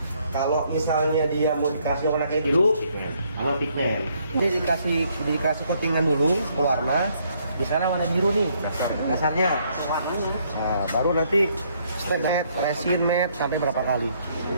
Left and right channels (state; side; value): inverted; both; correlation -0.69